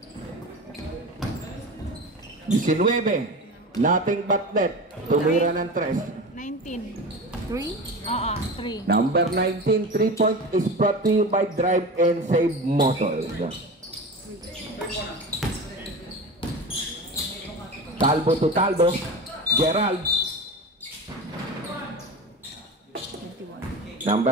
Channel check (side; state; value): both; normal; correlation 0.29